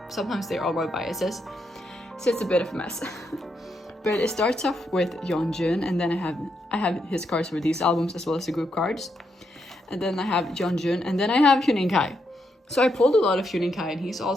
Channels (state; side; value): normal; both; correlation 0.80